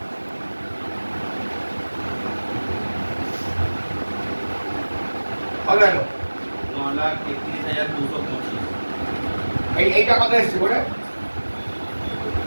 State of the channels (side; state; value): both; inverted; correlation -1.00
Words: কত হলো, 9,31,225। এইটা কত এসছে বলে